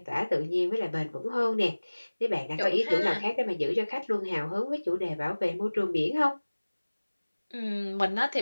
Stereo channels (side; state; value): both; inverted; correlation -1.00